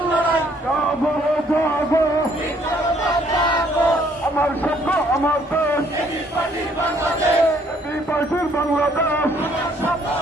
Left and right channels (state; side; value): normal; both; correlation 0.64